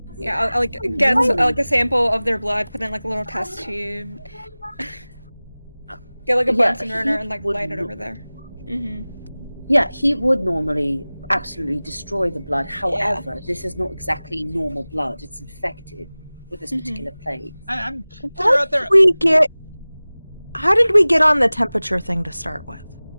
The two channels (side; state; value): both; inverted; correlation -0.99